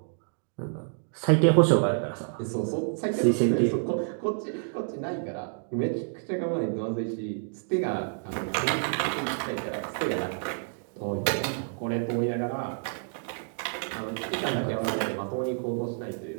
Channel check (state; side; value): silent; left; digital silence